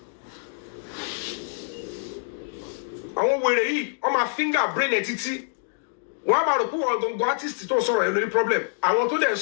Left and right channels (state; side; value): silent; right; digital silence